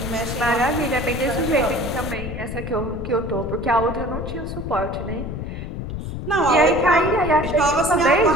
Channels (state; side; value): noise; left; rumble, 6 dB below the sound